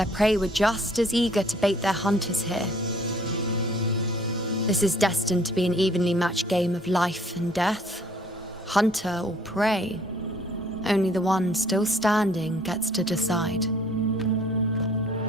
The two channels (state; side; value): normal; both; correlation 0.58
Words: prey were just as eager to bait their hunters here. This is destined to be an evenly matched game of life and death. Hunter or prey. Only the one still standing gets to decide.